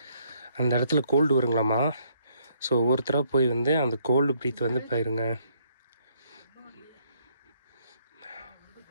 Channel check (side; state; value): both; inverted; correlation -0.69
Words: அந்த இடத்துல கோல்டு வருங்களாமா. ஸோ ஒவ்வொருத்தராக போய் வந்து அந்த கோல்டு ப்ரீத் வந்து பாருங்க,